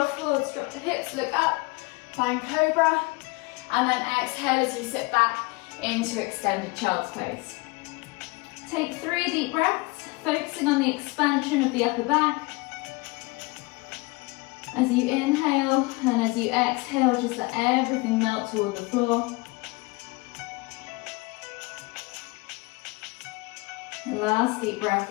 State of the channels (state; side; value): quieter; right; 25.1 dB